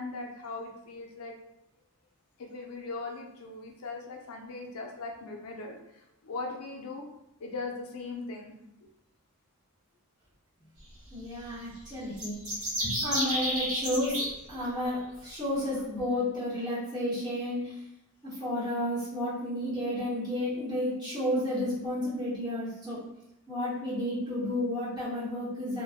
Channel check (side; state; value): both; normal; correlation 0.22